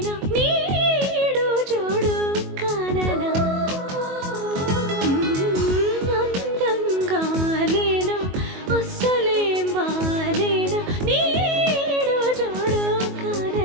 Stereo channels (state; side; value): late; left; 22 ms